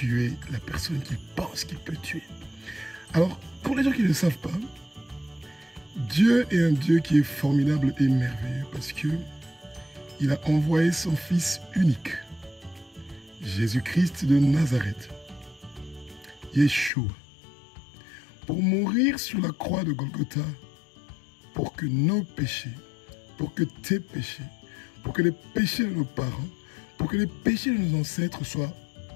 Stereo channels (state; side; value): drops out; right; at 16.9 s